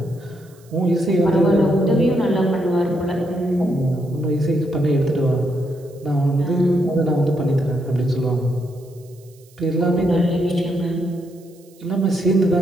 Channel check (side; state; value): right; noise; hiss, 29 dB below the sound